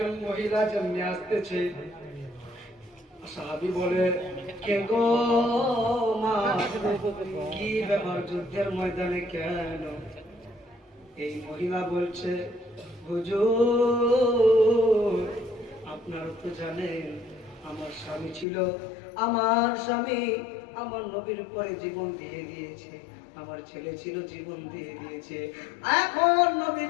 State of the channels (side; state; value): right; drops out; at 18.4 s